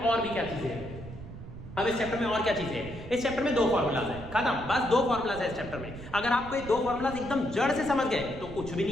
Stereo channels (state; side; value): noise; right; rumble, 12 dB below the sound